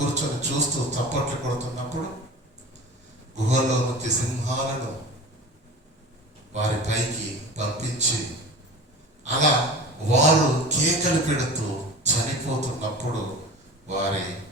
చూస్తూ చప్పట్లు కొడుతున్నప్పుడు గుహలో నుంచి సింహాలను వారి పైకి పంపించి అలా వారు కేకలు పెడుతూ చనిపోతున్నప్పుడు వారి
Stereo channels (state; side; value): normal; both; correlation 0.35